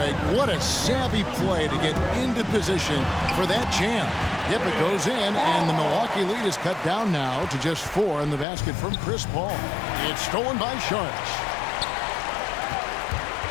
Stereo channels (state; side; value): drops out; right; at 8.5 s